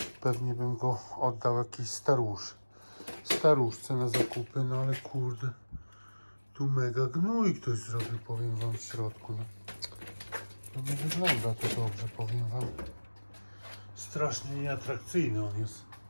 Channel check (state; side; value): inverted; both; correlation -1.00